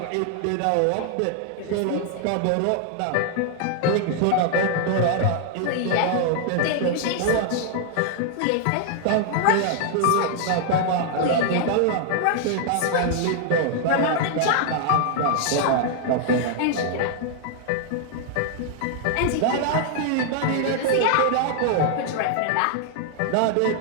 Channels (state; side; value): different; both; correlation -0.01